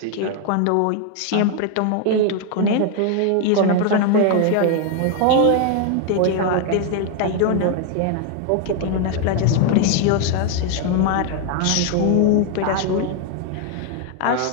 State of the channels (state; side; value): different; both; correlation 0.00